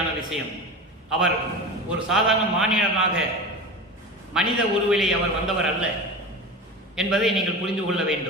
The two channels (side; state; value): both; normal; correlation 0.28